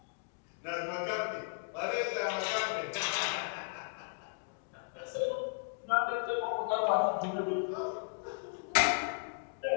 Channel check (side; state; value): right; silent; digital silence